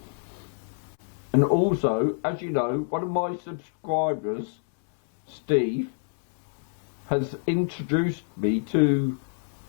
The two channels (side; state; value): right; silent; 60 dB below the other